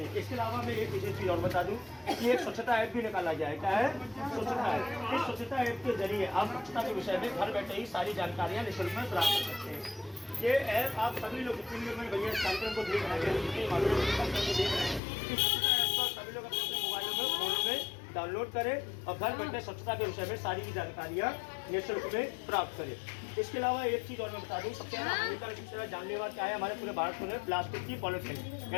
इसके अलावा मैं एक विशेष चीज़ और बता दूं कि एक स्वच्छता ऐप भी निकाला गया है। क्या है? स्वच्छता ऐप। इस स्वच्छता ऐप के जरिए आप स्वच्छता के विषय में घर बैठे ही सारी जानकारियाँ निःशुल्क में प्राप्त कर सकते हैं। ये ऐप आप सभी लोग, जितने लोग मेरे भैया इस कार्यक्रम को देख रहे हैं, जितने मालूम इस कार्यक्रम को देख रहे हैं, इस स्वच्छता ऐप को सभी लोग अपने अपने मोबाइलों में, फोनों में डाउनलोड करें और घर बैठे स्वच्छता के विषय में सारी जानकारियाँ निःशुल्क में प्राप्त करें। इसके अलावा एक चीज़ और मैं बता दूं, सबसे ज़्यादा हानिकारक, सबसे ज़्यादा जानलेवा क्या है हमारे पूरे भारत में? प्लास्टिक की पॉलिथीन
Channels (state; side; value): drops out; right; at 15.0 s